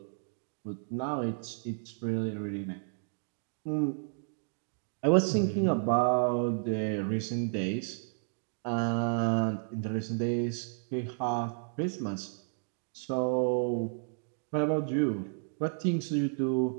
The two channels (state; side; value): silent; left; digital silence